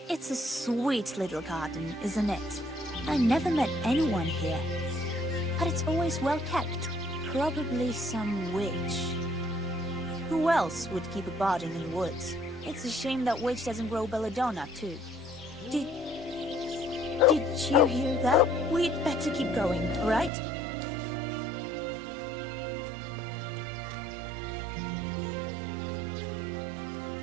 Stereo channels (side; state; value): left; drops out; at 20.3 s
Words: It's a sweet little garden, isn't it? I never met anyone here, but it's always well kept. Probably some witch. Who else would keep a garden in the woods? It's a shame that witch doesn't grow belladonna, too. Did you hear that? We'd better keep going, all right?